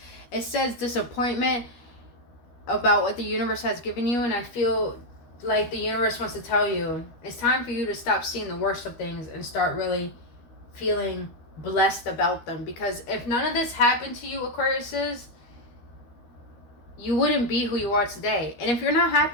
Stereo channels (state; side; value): late; right; 13 ms